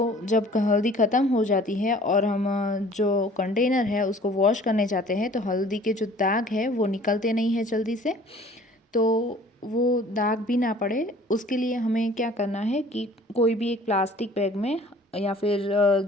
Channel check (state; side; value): normal; both; correlation 0.51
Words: जब हल्दी ख़त्म हो जाती है और हम जो कंटेनर है उसको वॉश करने जाते हैं तो हल्दी के जो दाग है वो निकलते नहीं है जल्दी से। तो वो दाग भी ना पड़े उसके लिए हमें क्या करना है कि कोई भी एक प्लास्टिक बैग में, या फिर